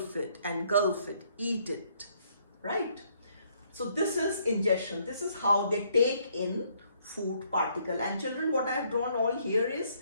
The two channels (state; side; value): inverted; both; correlation -0.68